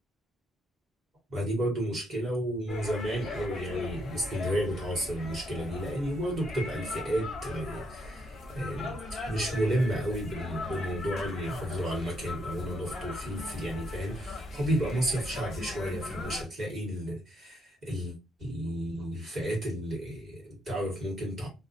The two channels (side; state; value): both; normal; correlation 0.75